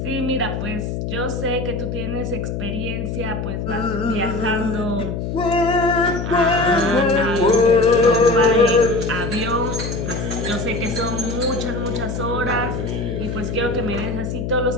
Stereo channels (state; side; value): noise; left; hum, 4 dB below the sound